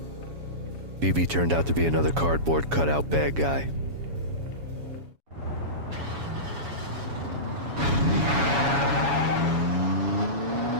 BB turned out to be another cardboard cutout bad guy.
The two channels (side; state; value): left; late; 7.2 ms